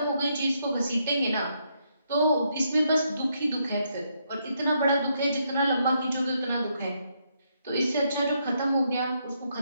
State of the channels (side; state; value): both; inverted; correlation -0.77